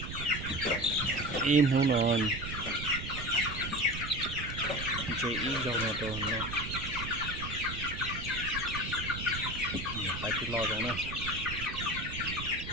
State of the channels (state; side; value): noise; right; rumble, 7 dB below the sound